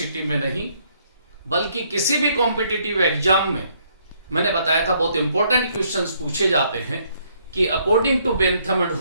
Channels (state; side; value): inverted; both; correlation -0.69